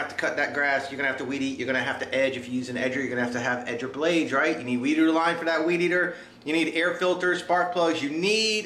to cut that grass, you're gonna have to weed eat, you're gonna have to edge. If you use an edger, you're gonna have edger blades, right? You need weed eater line for that weed eater. You need air filters, spark plugs. You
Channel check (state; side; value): identical; both; correlation 1.00